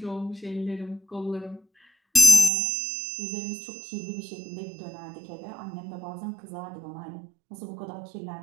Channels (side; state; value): left; drops out; at 2.5 s